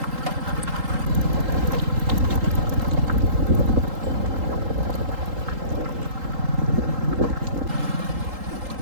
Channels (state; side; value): late; left; 3.8 ms